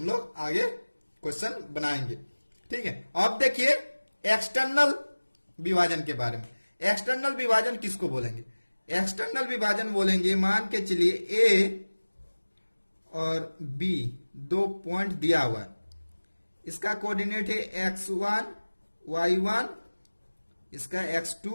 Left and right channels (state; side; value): inverted; both; correlation -1.00